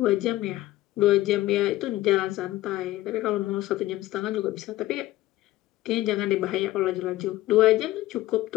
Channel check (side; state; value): right; quieter; 16.2 dB